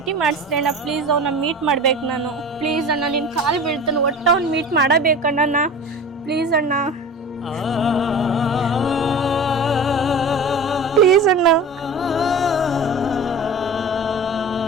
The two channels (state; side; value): normal; both; correlation 0.35